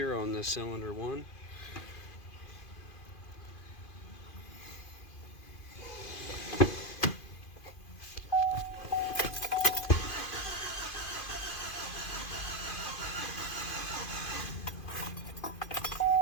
on the cylinder 1.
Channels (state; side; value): late; right; 2.5 ms